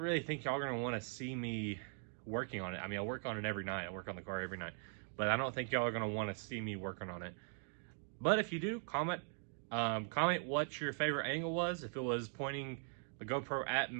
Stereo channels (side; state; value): left; silent; 51 dB below the other